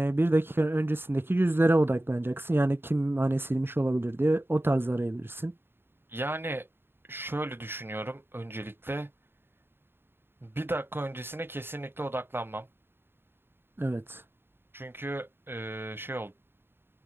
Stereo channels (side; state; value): left; late; 0.11 ms